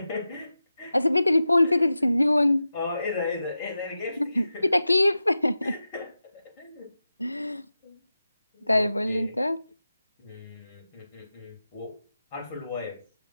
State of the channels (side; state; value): both; inverted; correlation -0.93